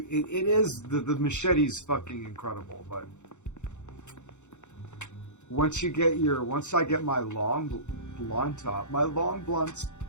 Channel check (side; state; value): right; late; 0.84 ms